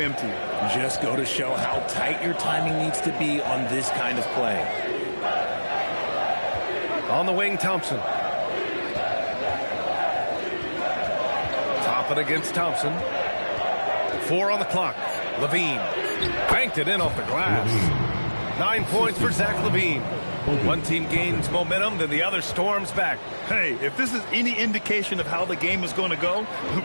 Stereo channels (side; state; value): both; inverted; correlation -1.00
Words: Just go to show how tight your timing needs to be on this kind of play. On the wing, Thompson. Toppin against Thompson. 4 on the clock. Levine banked it in off the glass. 9 points for Zach Levine. One team gains momentum, then the other storms back. Hey, if this is any indication of how the game is going to go,